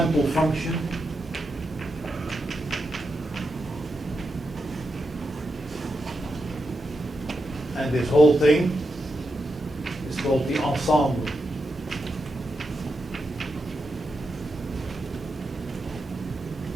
function. And this whole thing is called the ensemble.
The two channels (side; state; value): both; normal; correlation 0.86